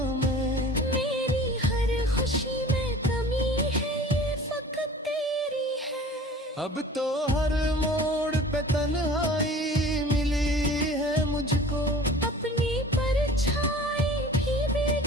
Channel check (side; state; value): both; normal; correlation 0.43